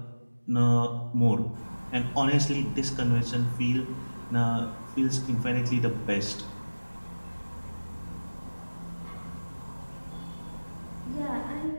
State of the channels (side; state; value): both; inverted; correlation -1.00